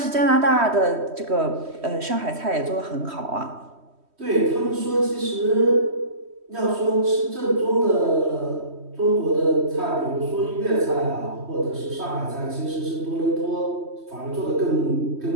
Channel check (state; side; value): late; left; 3.1 ms